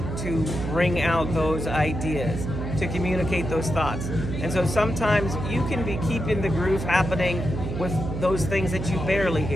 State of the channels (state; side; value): noise; right; hum, 5 dB below the sound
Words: to bring out those ideas, to communicate those thoughts. And so sometimes you can be keeping the groove happening with those things that you barely